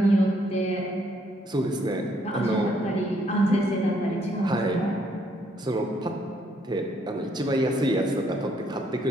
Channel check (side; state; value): both; normal; correlation 0.70